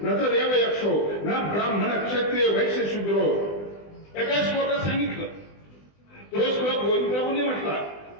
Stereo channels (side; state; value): right; late; 20 ms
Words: न तर देव यक्षो न ब्राह्मण क्षत्रिय वैश्य शूद्रो. एका श्लोकात सांगितलं. तो श्लोक गोविंद प्रभूंनी म्हटला,